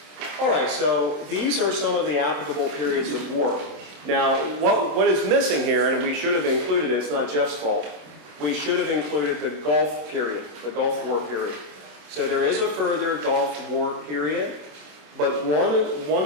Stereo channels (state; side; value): late; left; 27 ms